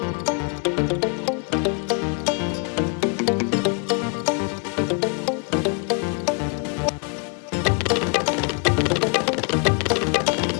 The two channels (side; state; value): right; quieter; 38.7 dB